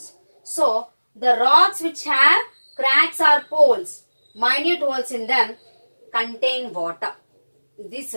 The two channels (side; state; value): both; inverted; correlation -1.00